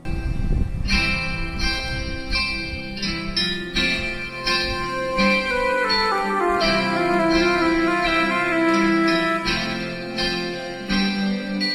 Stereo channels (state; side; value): identical; both; correlation 1.00